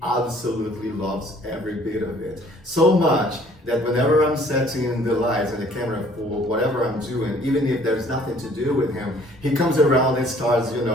absolutely loves every bit of it. So much that whenever I'm setting the lights and the camera for whatever I'm doing, even if there's nothing to do with him, he comes around and starts,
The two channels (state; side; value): normal; both; correlation 0.57